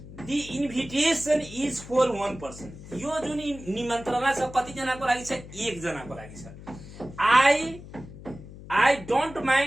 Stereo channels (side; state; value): left; noise; hum, 15 dB below the sound